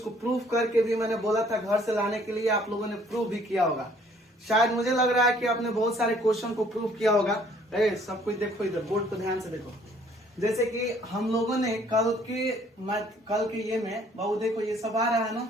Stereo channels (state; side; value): normal; both; correlation 0.60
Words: प्रूफ करके भी मैंने बोला था घर से लाने के लिए, आप लोगों ने प्रूफ भी किया होगा। शायद मुझे लग रहा है कि आपने बहुत सारे क्वेश्चन को प्रूफ किया होगा। सब कुछ देखो, इधर बोर्ड पर ध्यान से देखो। जैसे कि हम लोगों ने कल के ये में बाबू देखो, ये सब आ रहा है ना